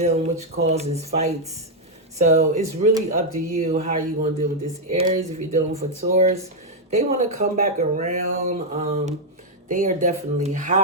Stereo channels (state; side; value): normal; both; correlation -0.01